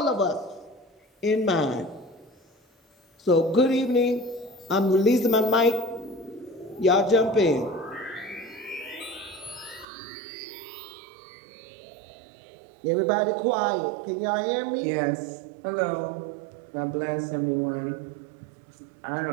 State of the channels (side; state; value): left; drops out; at 9.9 s